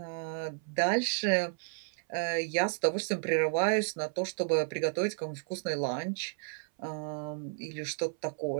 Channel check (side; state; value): left; silent; 56 dB below the other